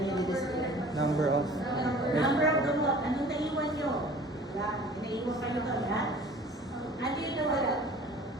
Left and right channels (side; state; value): both; normal; correlation 0.46